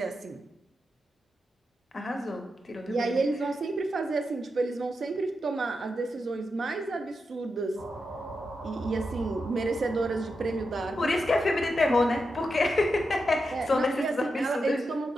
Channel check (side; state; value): both; normal; correlation 0.87